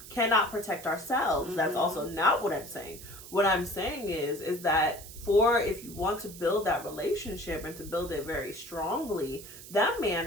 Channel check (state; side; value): noise; right; hiss, 15 dB below the sound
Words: cannot protect ourselves. That's also not what I'm saying. What I'm saying is that if you want to build that relationship and to build it very strongly, that